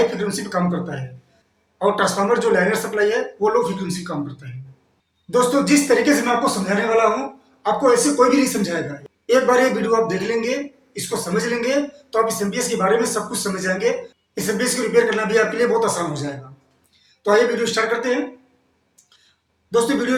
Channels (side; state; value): both; identical; correlation 1.00